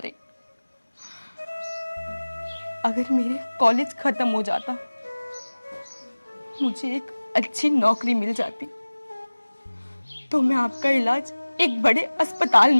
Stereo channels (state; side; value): inverted; both; correlation -1.00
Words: अगर मेरे कॉलेज खत्म हो जाता, मुझे एक अच्छी नौकरी मिल जाती, तो मैं आपका इलाज एक बड़े अस्पताल